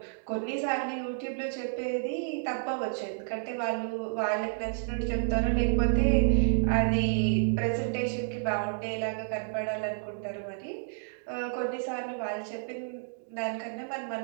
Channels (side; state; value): left; silent; digital silence